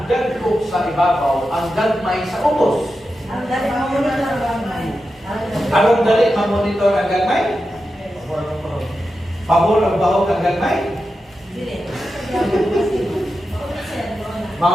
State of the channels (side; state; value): both; normal; correlation 0.90